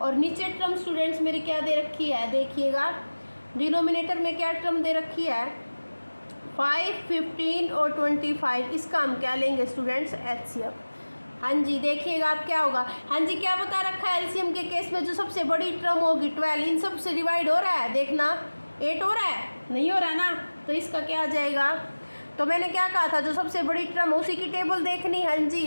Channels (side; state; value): both; inverted; correlation -1.00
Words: और नीचे टर्म स्टूडेंट्स मेरी क्या दे रखी है, देखिएगा डिनोमिनेटर में क्या टर्म दे रखी है, 5, 15 और 25, इसका हम क्या लेंगे स्टूडेंट्स, HCF। हाँ जी, देखिएगा आप क्या होगा, हाँ जी, क्या बता रखा है, LCM के केस में जो सबसे बड़ी टर्म होगी 12, इन सब से डिवाइड हो रहा है, देखना 8 हो रहा है, नहीं हो रहा ना, तो इसका क्या आ जाएगा। तो मैंने क्या कहा था, जो सबसे बड़ी टर्म उसी की टेबल देखनी। हाँ जी,